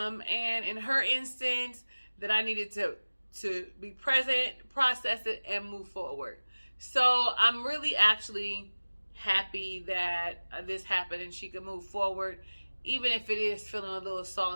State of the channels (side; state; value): both; inverted; correlation -1.00